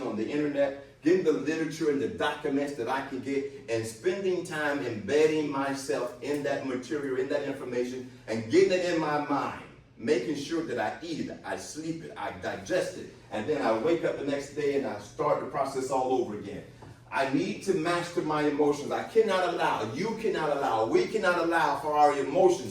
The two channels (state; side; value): identical; both; correlation 1.00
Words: on the internet, getting the literature and the documents that I can get, and spending time embedding myself in that material, in that information, and getting it in my mind, making sure that I eat it, I sleep it, I digest it, and then I wake up the next day and I start the process all over again. I need to master my emotions. I cannot allow, you cannot allow, we cannot allow for our